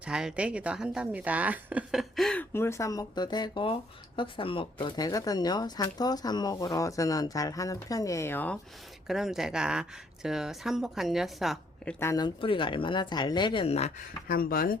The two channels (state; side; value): normal; both; correlation 0.67